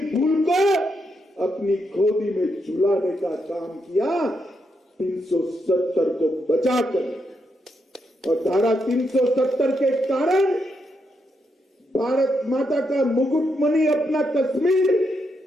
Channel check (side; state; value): both; normal; correlation 0.81